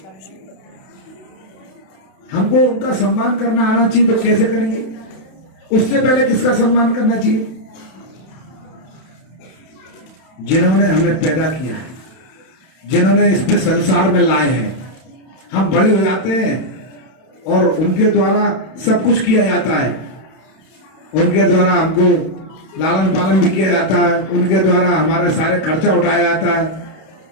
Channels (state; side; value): late; right; 32 ms